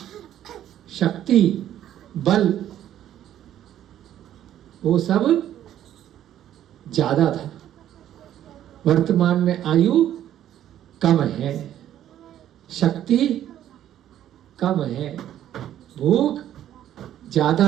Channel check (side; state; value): left; quieter; 11.4 dB